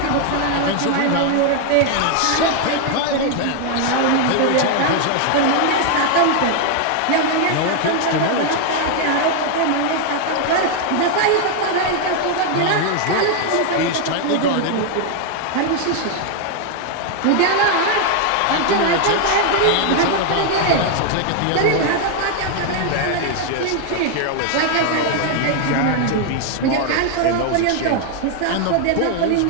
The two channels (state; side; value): different; both; correlation 0.00